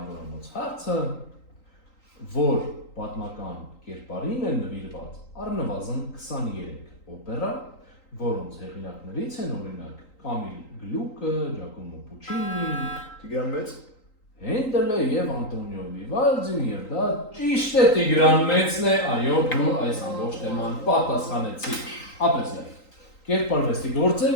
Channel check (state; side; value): late; right; 3.9 ms